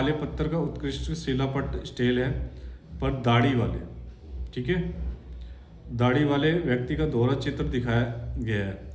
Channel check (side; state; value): both; identical; correlation 1.00